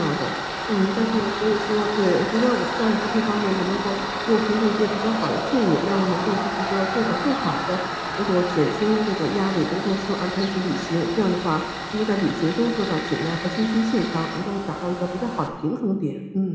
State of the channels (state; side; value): identical; both; correlation 1.00